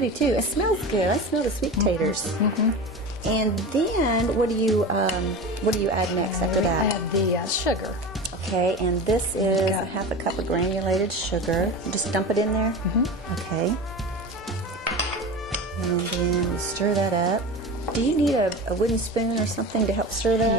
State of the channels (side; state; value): both; normal; correlation 0.29